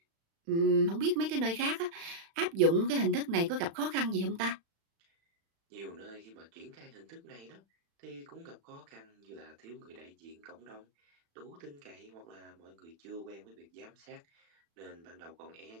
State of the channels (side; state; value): left; late; 36 ms